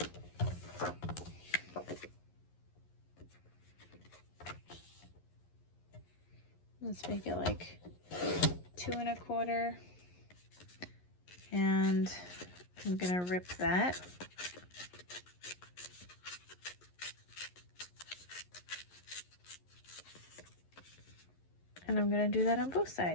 Let's make it like 2 1/4, and I'm gonna rip that. And I'm gonna do that on both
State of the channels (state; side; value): late; right; 11 ms